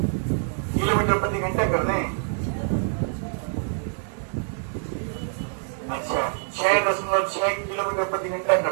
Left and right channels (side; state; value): left; silent; digital silence